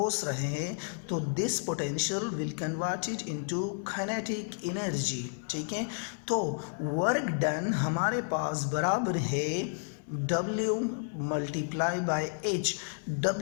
रहे हैं तो this potential will converted into kinetic energy, ठीक है। तो वर्क डन हमारे पास बराबर है W multiply by H.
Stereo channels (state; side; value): silent; right; 57 dB below the other